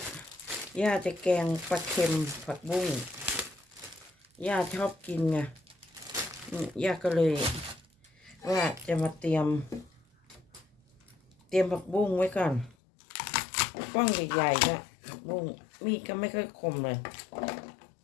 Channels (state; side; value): drops out; right; at 12.8 s